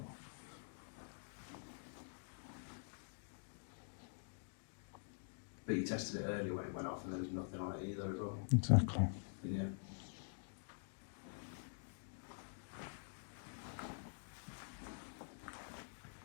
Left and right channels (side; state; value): right; silent; digital silence